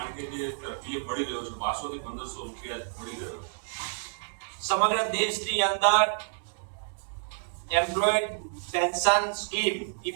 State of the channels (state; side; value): silent; left; digital silence